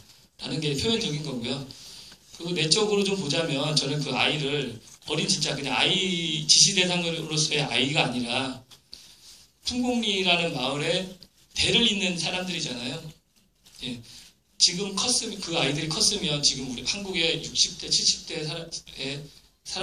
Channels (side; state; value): both; identical; correlation 1.00